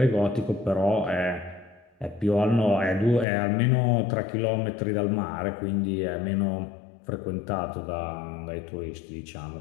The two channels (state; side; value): drops out; right; at 3.2 s